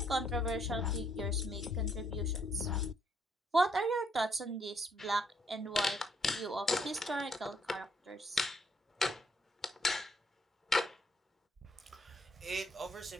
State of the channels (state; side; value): normal; both; correlation 0.71